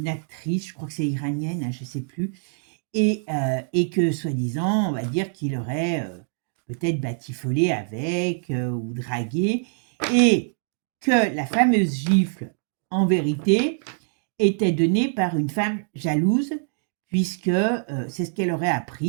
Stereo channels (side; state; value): left; silent; digital silence